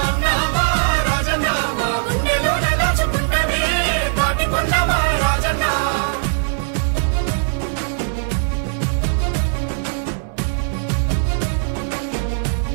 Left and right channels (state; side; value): silent; left; digital silence